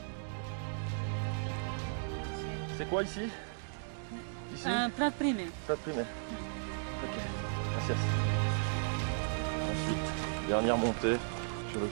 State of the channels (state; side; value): silent; left; digital silence